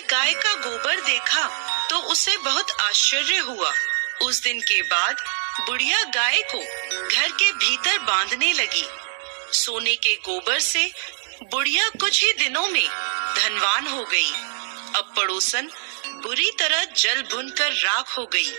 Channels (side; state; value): left; silent; digital silence